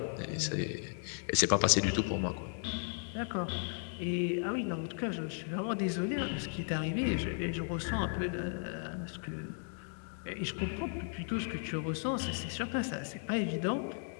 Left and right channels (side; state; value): right; silent; 54 dB below the other